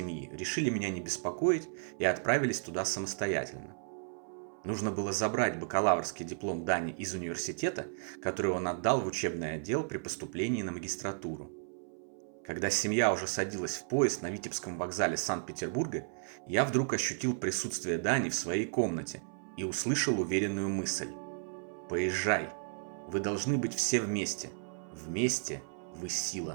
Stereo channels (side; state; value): left; silent; 55 dB below the other